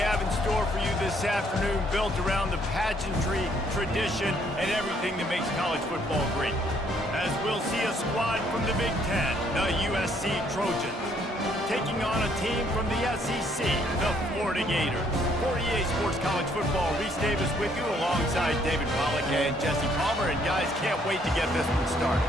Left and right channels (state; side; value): normal; both; correlation 0.67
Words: have in store for you this afternoon, built around the pageantry, tradition, and everything that makes college football great. As we'll see a squad from the Big Ten, the USC Trojans, taking on a team from the SEC, the Florida Gators. For EA Sports College Football, Reese Davis with you alongside David Pollack and Jesse Palmer. And guys, can't wait to get this one started.